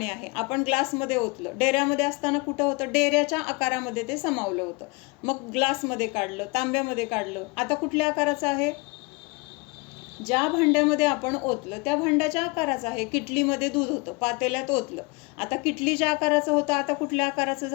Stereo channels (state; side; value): quieter; right; 28.0 dB